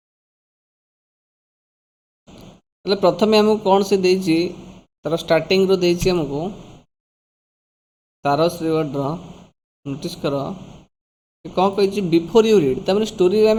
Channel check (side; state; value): both; identical; correlation 1.00